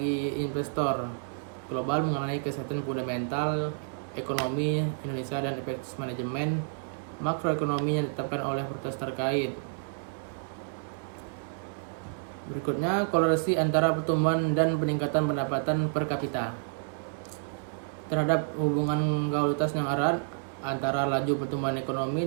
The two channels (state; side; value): silent; left; digital silence